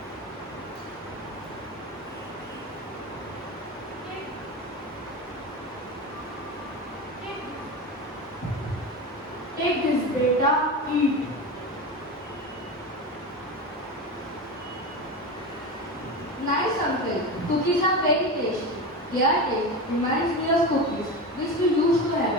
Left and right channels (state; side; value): normal; both; correlation 0.23